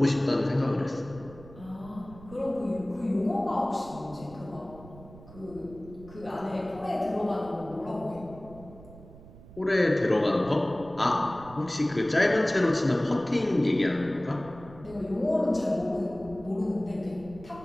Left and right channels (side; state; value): right; noise; rumble, 19 dB below the sound